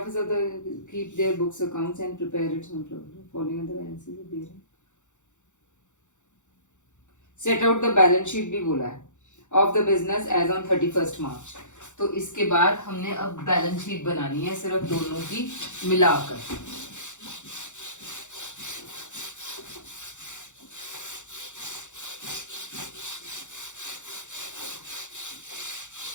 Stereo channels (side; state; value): right; late; 0.85 ms